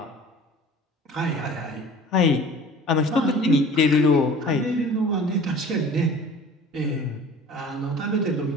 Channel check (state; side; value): normal; both; correlation 0.44